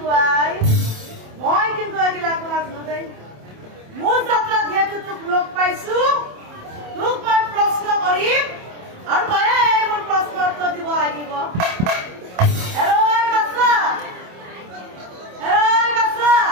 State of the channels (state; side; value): late; left; 27 ms